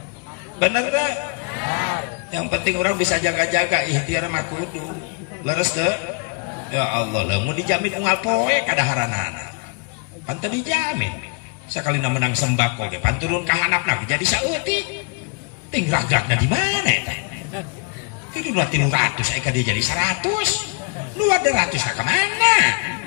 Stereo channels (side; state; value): right; quieter; 33.2 dB